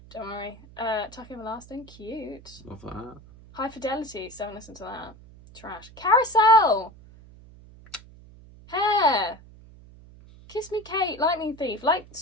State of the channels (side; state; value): right; noise; hum, 21 dB below the sound